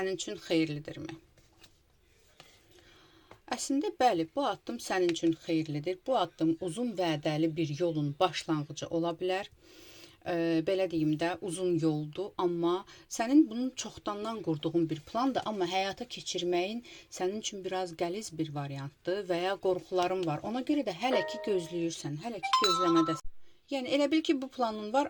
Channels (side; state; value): both; identical; correlation 1.00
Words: üçün xeyirlidirmi? Əslində, bəli, bu addım sənin üçün xeyirlidir. Bu addım uzun vədəli bir yolun başlanğıcı ola bilər. Belə deyim də, uzun yoldur, amma sənin bunun çoxdandan qurduğun bir plandır, amma həyata keçirməyin sənin üçün biraz qəliz bir variantdır və ya qorxuların var. Ona görə də hələ ki gözləyirsən, hələ ki gözləmədəsən. Yəni, elə bil ki, bu planın